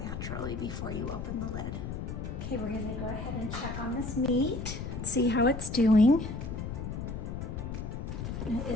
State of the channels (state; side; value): noise; left; rumble, 5 dB below the sound